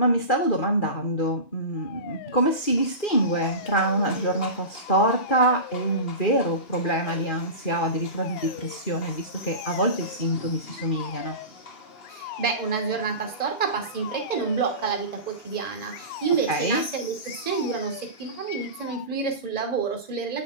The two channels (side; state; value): right; late; 2.4 ms